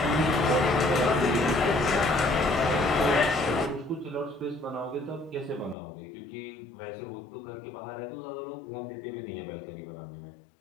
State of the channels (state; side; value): drops out; right; at 5.8 s